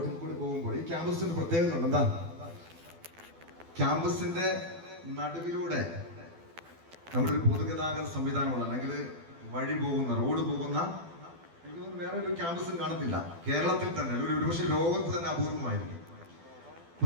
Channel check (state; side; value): late; left; 12 ms